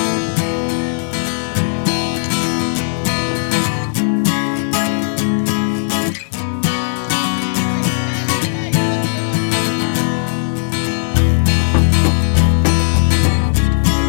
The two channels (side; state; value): right; silent; digital silence